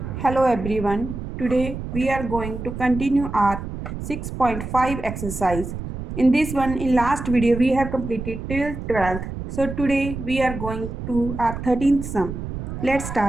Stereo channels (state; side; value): noise; right; rumble, 7 dB below the sound